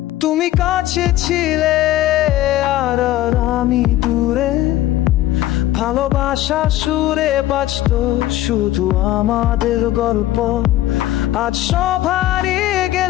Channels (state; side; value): quieter; right; 14.7 dB